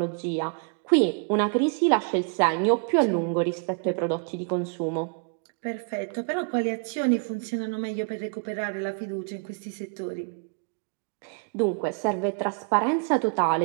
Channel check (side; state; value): left; quieter; 38.8 dB